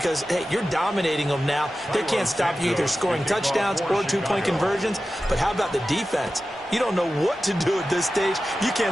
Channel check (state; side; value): normal; both; correlation 0.94